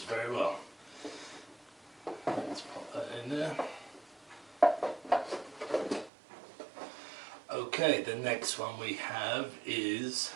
very well. Let's pop that in there. Okay, the next one we have is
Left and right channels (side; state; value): left; drops out; at 6.1 s